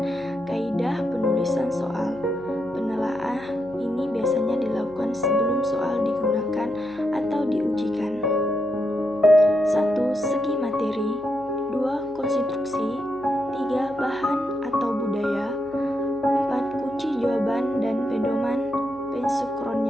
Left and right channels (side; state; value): right; noise; hum, 24 dB below the sound